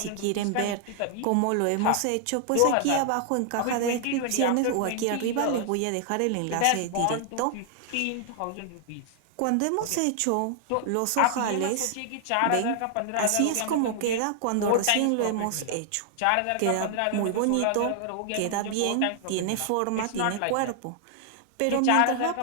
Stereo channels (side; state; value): both; different; correlation 0.00